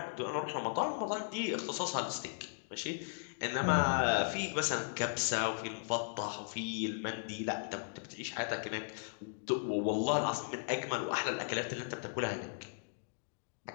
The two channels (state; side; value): silent; right; digital silence